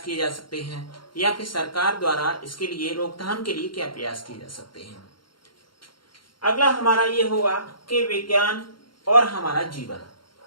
किए जा सकते हैं, या फिर सरकार द्वारा इसके लिए रोकथाम के लिए क्या प्रयास किए जा सकते हैं। अगला हमारा ये होगा कि विज्ञान और हमारा जीवन।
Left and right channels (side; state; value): right; late; 0.72 ms